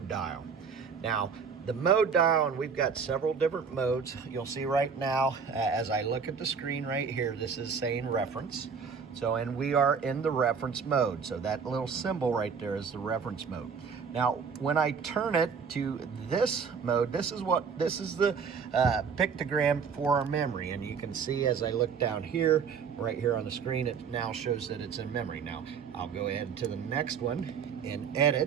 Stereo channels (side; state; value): left; quieter; 6.1 dB